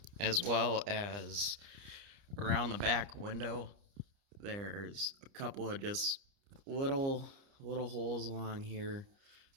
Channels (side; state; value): left; late; 30 ms